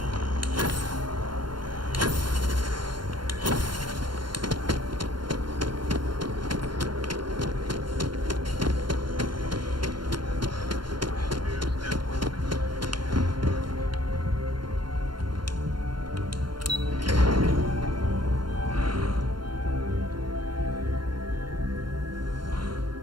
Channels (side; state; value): left; late; 0.72 ms